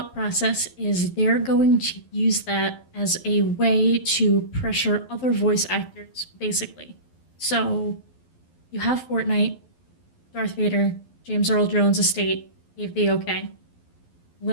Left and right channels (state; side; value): late; right; 12 ms